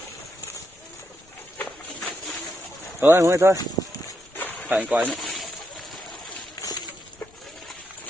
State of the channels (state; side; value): noise; left; rumble, 28 dB below the sound